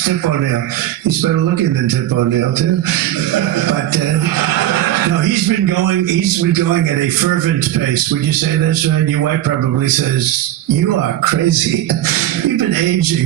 Tip O'Neill? He's better looking than Tip O'Neill, too. But No, he's been going at a fervent pace. Would you say that's right? Your wife probably says, "You are crazy. You've been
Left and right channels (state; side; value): quieter; left; 13.0 dB